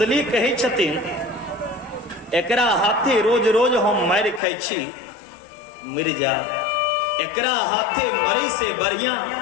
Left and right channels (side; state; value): right; drops out; at 4.4 s